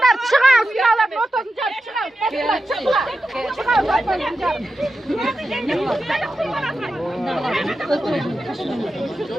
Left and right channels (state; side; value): normal; both; correlation 0.90